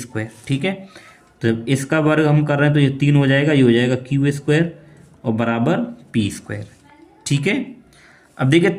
ठीक है, तो जब इसका वर्ग हम कर रहे हैं तो ये 3 हो जाएगा, ये हो जाएगा क्यू स्क्वायर और बराबर पी स्क्वायर। ठीक है, अब देखिए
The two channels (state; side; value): identical; both; correlation 1.00